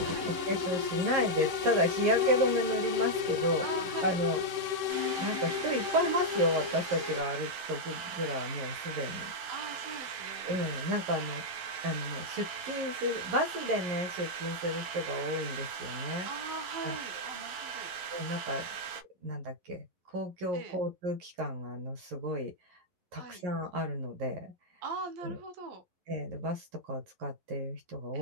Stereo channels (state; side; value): late; left; 11 ms